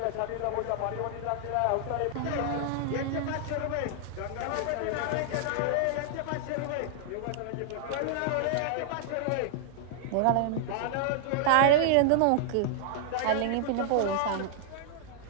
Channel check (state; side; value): different; both; correlation -0.01